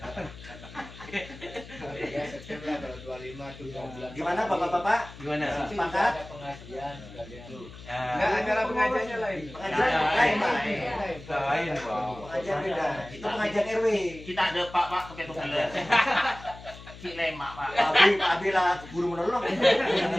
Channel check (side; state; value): left; noise; hum, 17 dB below the sound